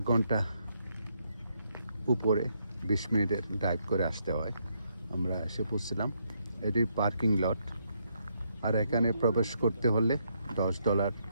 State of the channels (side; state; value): both; inverted; correlation -0.76